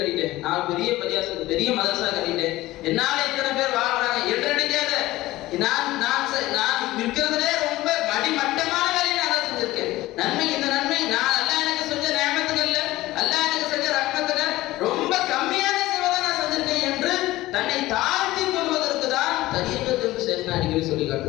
நான் பெரிய பரியாசம் பெரிய மதரசா கட்டிட்டேன், என்னால இத்தனை பேர் வாழ்றாங்க என்று நினைக்காத. நான் இருக்கிறதுலே ரொம்ப மடி விஷயம் அடிக்கடி சொல்லி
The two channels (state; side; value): quieter; right; 17.4 dB